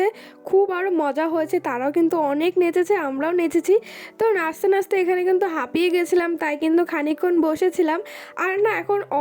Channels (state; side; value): identical; both; correlation 1.00